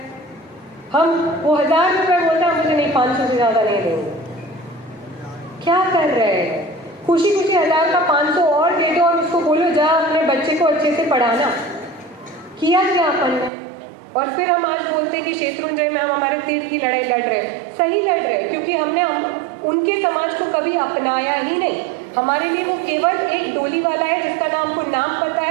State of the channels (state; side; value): drops out; left; at 13.5 s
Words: हम वो 1000 रुपये बोलता है, मुझे नहीं 500 से ज़्यादा नहीं देंगे। क्या कर रहे हैं? खुशी खुशी 1000 का 500 और दे दो और उसको बोलो जा अपने बच्चे को अच्छे से पढ़ाना। किया क्या अपन ने? और फिर हम आज बोलते कि शेत्रुंजय में हम हमारे तीर की लड़ाई लड़ रहे हैं। सही लड़ रहे हैं, क्योंकि हमने उनके समाज को कभी अपनाया ही नहीं। हमारे लिए वो केवल एक डोली वाला है जिसका नाम को नाम पता